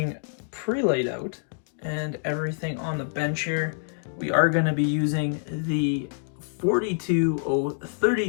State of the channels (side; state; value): right; silent; digital silence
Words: pre-laid out and everything on the bench here. We are going to be using the